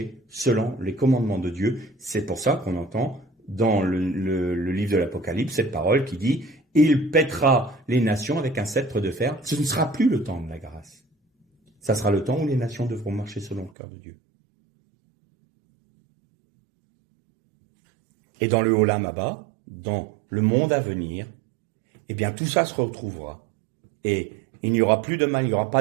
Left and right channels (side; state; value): left; drops out; at 13.7 s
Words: selon les commandements de Dieu. C'est pour ça qu'on entend dans le livre de l'Apocalypse cette parole qui dit « Il pètera les nations avec un sceptre de fer ». Ce ne sera plus le temps de la grâce. Ça sera le temps où les nations devront marcher selon le cœur de Dieu. Et dans le Olam Haba, dans le monde à venir, eh bien tout ça se retrouvera. Et il n'y aura plus de mal, il n'y aura pas